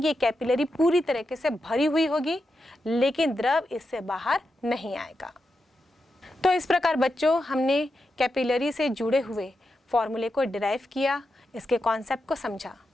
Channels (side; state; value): both; normal; correlation 0.87